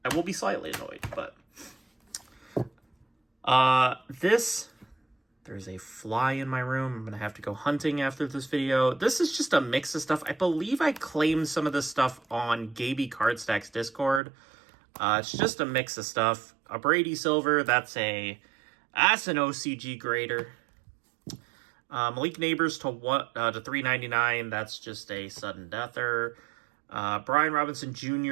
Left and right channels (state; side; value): drops out; left; at 14.2 s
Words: I will be slightly annoyed, but there's a fly in my room. I'm going to have to go hunting after this video. This is just a mix of stuff. I believe I claimed some of this stuff on Gaby Cardstack's Discord. It's just a mix of stuff. A Brady Silver, that's an OCG grader. Malik Neighbors to $3.99. That's just a sudden deather. Brian Robinson